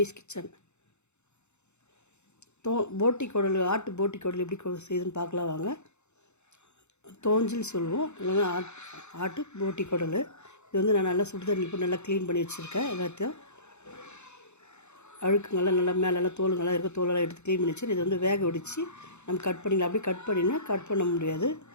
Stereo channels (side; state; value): right; late; 0.82 ms